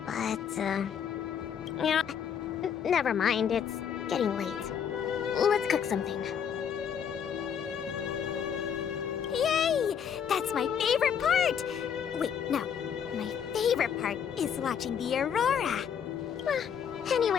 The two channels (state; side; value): quieter; right; 7.9 dB